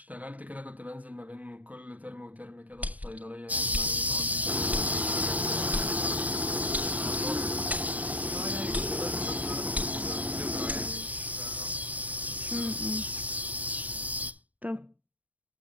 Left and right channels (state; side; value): late; left; 0.073 ms